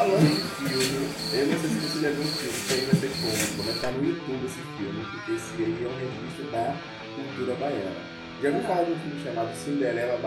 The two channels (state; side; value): identical; both; correlation 1.00